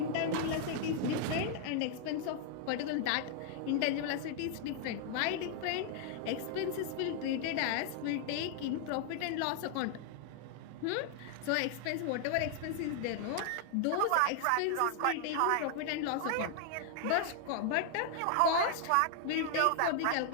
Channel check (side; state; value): both; different; correlation 0.00